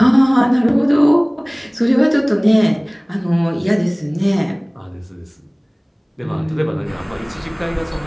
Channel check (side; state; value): both; identical; correlation 1.00